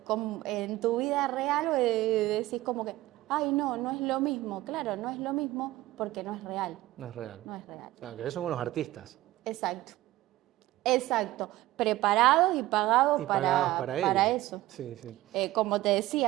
tu vida real, decís como que, ay, no, no es lo mismo. Claro, no es lo mismo porque no es real. No es real. No es real. Claro, que son unos artistas. Exacto. Exacto. Preparados y pagados Y pagados para ello. eso. Sí, sí. Como te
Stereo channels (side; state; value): left; quieter; 16.8 dB